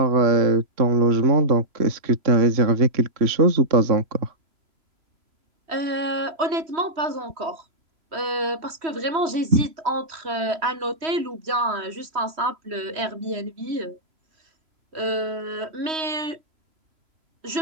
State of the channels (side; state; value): left; late; 3.1 ms